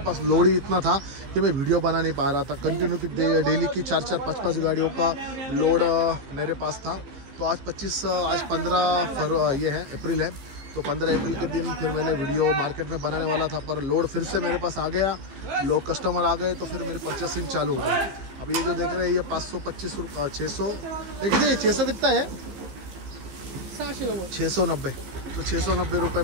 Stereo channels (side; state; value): left; late; 15 ms